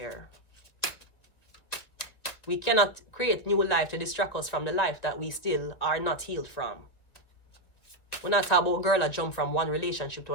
We cannot create new life to distract us from the life that we still are not healed from. We're not talking about girl that jump from one relationship to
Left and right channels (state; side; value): late; right; 2.0 ms